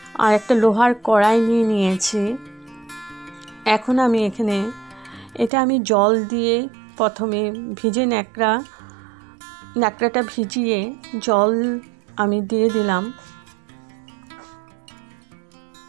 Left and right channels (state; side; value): drops out; left; at 5.5 s